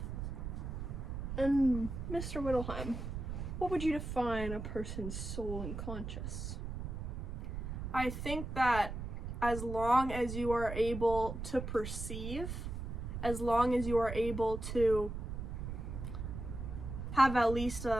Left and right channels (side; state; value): right; noise; rumble, 5 dB below the sound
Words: And Mr. Whittleheim, what would you define a person's soul and conscious? I think that as long as you are able to perceive, as long as you are able to have at least